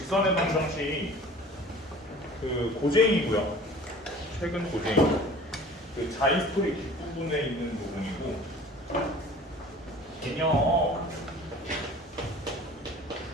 방정식 그 고쟁이고요. 최근 고쟁이. 그 자이스토리 뒷부분에 있는 부분이고 개념.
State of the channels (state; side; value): normal; both; correlation 0.44